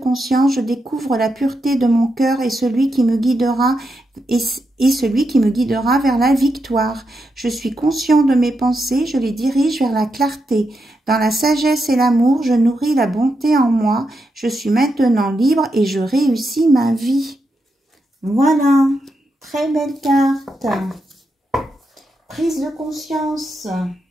je découvre la pureté de mon cœur et celui qui me guidera vers la victoire. Je suis conscient de mes pensées, je les dirige vers la clarté. Dans la sagesse et l'amour, je nourris la bonté en moi. Je suis maintenant libre et je réussis ma vie. Voilà, très belle carte. Prise de conscience.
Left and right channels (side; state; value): both; normal; correlation 0.85